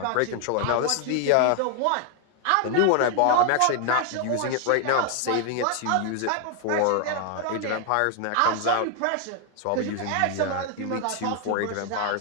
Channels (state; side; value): different; both; correlation 0.00